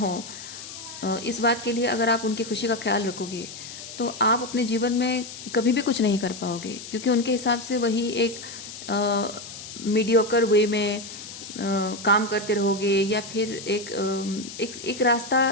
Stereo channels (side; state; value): left; noise; hiss, 12 dB below the sound